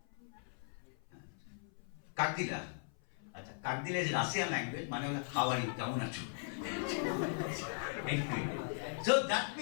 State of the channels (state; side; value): silent; right; 52 dB below the other